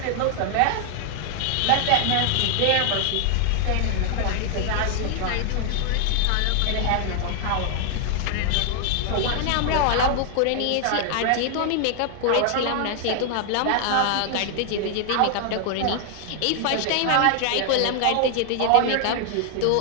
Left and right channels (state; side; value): different; both; correlation 0.00